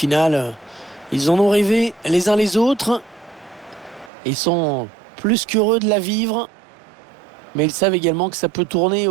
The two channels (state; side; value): drops out; left; at 4.1 s